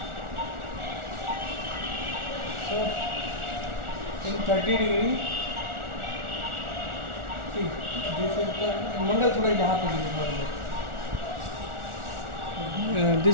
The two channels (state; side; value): late; left; 1.4 ms